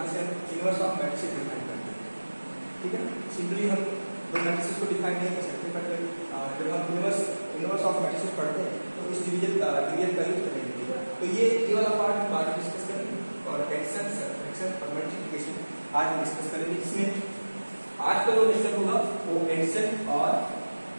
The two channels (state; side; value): inverted; both; correlation -1.00